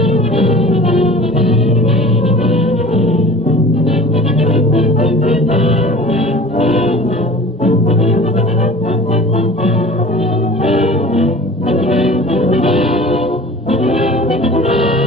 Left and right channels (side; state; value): both; normal; correlation 0.41